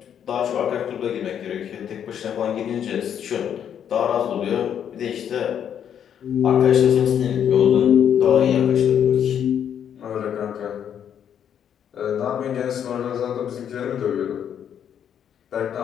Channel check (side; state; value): right; quieter; 8.9 dB